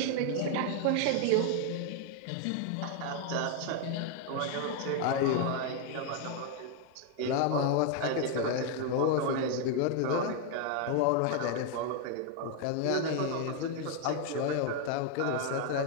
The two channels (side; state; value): both; different; correlation 0.00